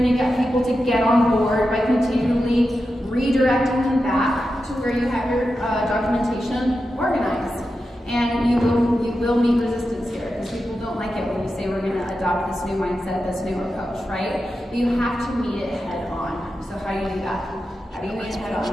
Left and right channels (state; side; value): normal; both; correlation 0.90